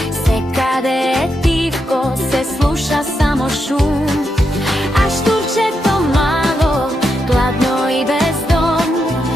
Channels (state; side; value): normal; both; correlation 0.83